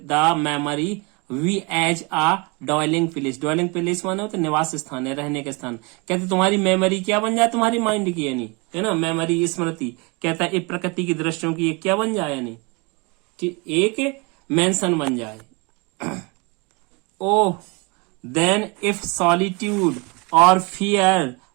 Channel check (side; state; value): left; quieter; 29.0 dB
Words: memory be as a dwelling place, dwelling place माने होता निवास स्थान है, रहने का स्थान। कहते तुम्हारी मेमोरी क्या बन जाए, तुम्हारी माइंड की, यानी, है ना, मेमोरी स्मृति। कहता है प्रकृति की दृश्यों की क्या बन जाए, यानी कि एक मेंशन बन जाए। ओह देन इफ सॉलिट्यूड और फियर